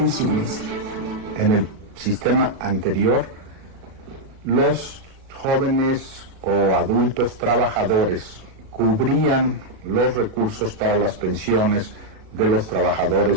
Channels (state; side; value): late; left; 37 ms